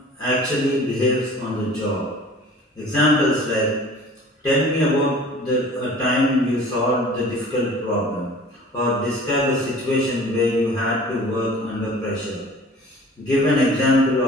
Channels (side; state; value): both; normal; correlation 0.45